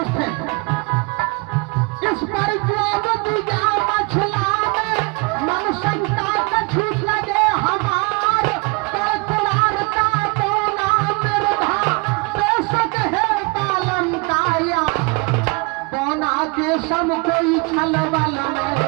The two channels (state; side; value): quieter; left; 29.6 dB